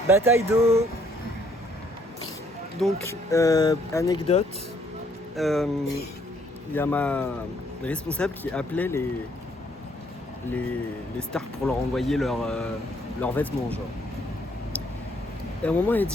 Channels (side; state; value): both; normal; correlation 0.66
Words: Bataille d'eau. Donc, anecdote. Il y a ma responsable qui appelait les stars pour leur envoyer leurs vêtements, genre. Et à un moment, elle